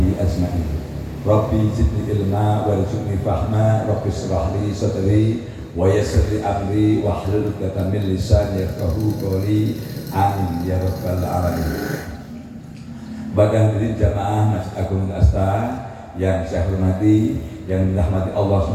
ajma'in. Rabbi zidni ilma warzuqni fahma, Rabbi shrah li sadri wa yassir li amri wahlul 'uqdatam min lisani yafqahu qawli. Amin ya rabbal alamin. Pada hadirin jamaah Masjid Agung Al-Asta yang saya hormati, yang dirahmati Allah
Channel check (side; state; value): both; identical; correlation 1.00